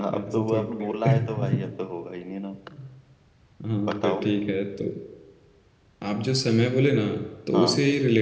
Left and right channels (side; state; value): both; identical; correlation 1.00